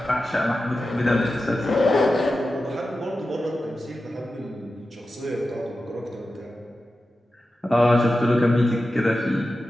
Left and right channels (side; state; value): both; normal; correlation 0.92